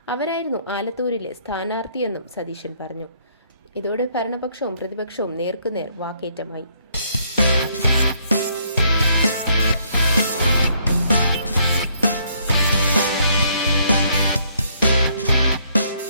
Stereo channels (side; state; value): both; inverted; correlation -0.68